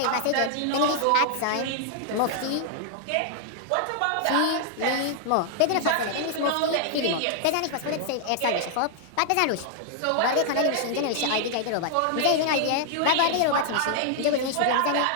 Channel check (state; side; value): different; both; correlation 0.00